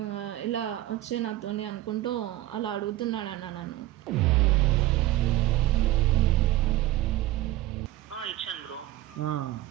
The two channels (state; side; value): quieter; left; 15.4 dB